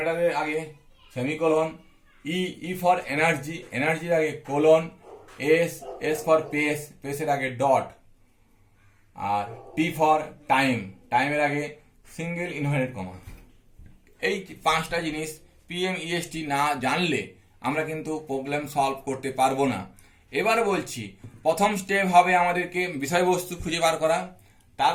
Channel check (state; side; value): identical; both; correlation 1.00